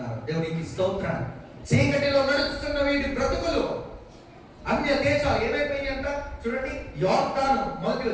దేవునికి స్తోత్రం. చీకటిలో నడుచుతున్న వీటి బ్రతుకులు, అన్య దేశాలు ఏమైపోయినాయి అంట. చూడండి, యోర్దాను, మొదటి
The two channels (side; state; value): both; identical; correlation 1.00